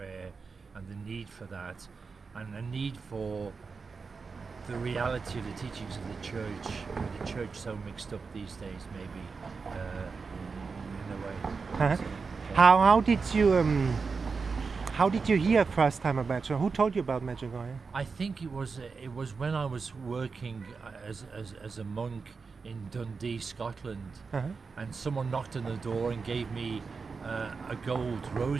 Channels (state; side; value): quieter; left; 4.8 dB